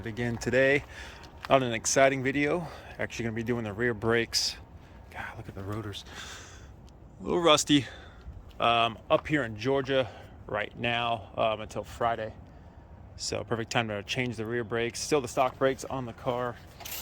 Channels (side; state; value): both; identical; correlation 1.00